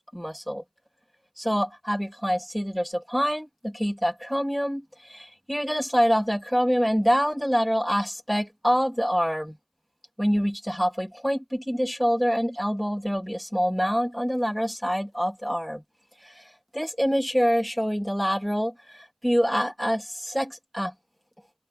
muscle. So have your client seated or supine, locate the acromion. You're going to slide off the acromion and down the lateral aspect of the arm. When you reach the halfway point between the shoulder and elbow, there will be a small mound on the lateral side of the arm. This image here is showing the lateral view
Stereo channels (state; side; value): identical; both; correlation 1.00